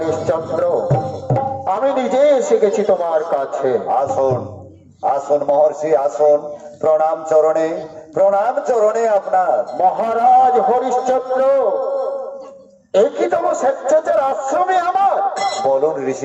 আমি নিজে এসে গেছি তোমার কাছে। আসুন আসুন মহর্ষি, আসুন। প্রণাম চরণে আপনার। মহারাজ হরিশ্চন্দ্র, একই তম স্বেচ্ছাচার আশ্রমে আমার। বলুন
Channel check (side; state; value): both; identical; correlation 1.00